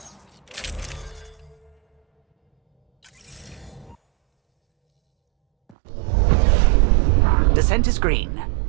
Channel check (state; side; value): drops out; left; at 5.8 s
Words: Descent is green.